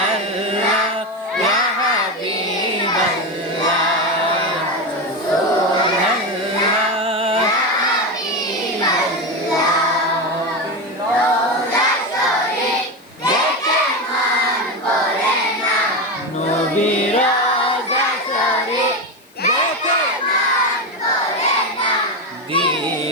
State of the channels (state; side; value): noise; left; hiss, 30 dB below the sound